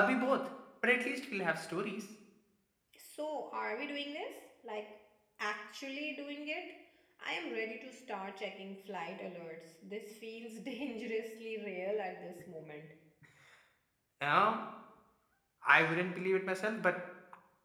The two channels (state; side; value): identical; both; correlation 1.00